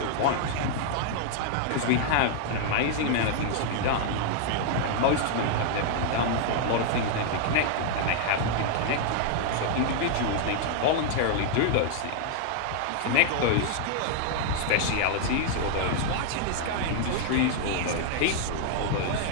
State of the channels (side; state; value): both; different; correlation -0.01